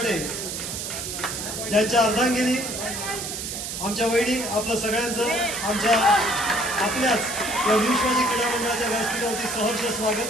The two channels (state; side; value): noise; right; hiss, 5 dB below the sound